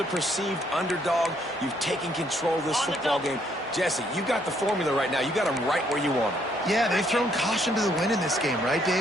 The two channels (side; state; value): both; normal; correlation 0.69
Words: perceived underdog. You've taken control of this football game. Jesse, you got the formula right now. You got them right where you want them. Yeah, they've thrown caution to the wind in this game, right,